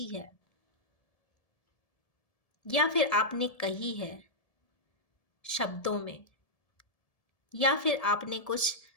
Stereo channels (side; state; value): right; late; 1.7 ms